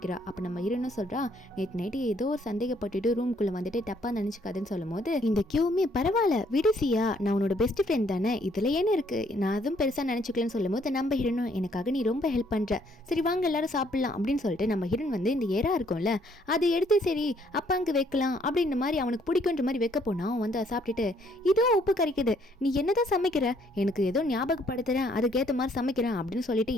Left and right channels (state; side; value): normal; both; correlation 0.66